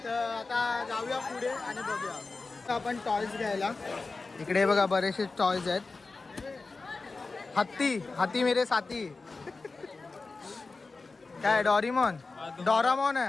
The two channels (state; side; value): quieter; right; 3.8 dB